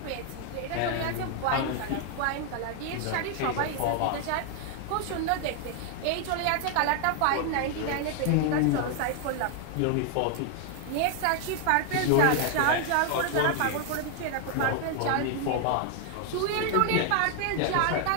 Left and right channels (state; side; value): different; both; correlation 0.00